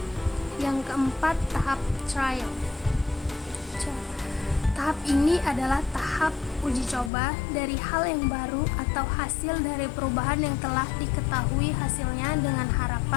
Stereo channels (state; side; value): drops out; right; at 7.1 s